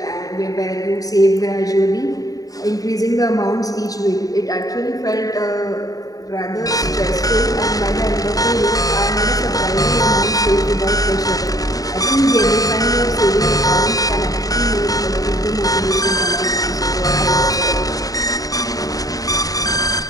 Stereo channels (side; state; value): right; late; 0.18 ms